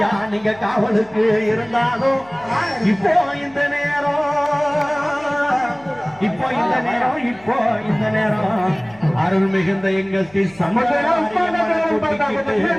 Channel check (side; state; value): left; noise; hum, 26 dB below the sound